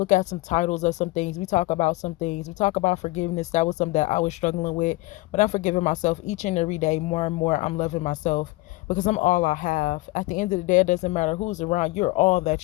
at some titles of some things. We talk about some things. We talk about forgiveness. That was something that I was struggling with, but I'm forgiving myself each and every day more and more. I'm loving myself because I'm all I have. At the end of the day, it doesn't matter who's around. You're all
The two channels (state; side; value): quieter; right; 21.1 dB